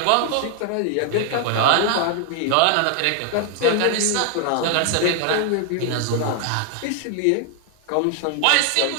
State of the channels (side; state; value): both; different; correlation 0.00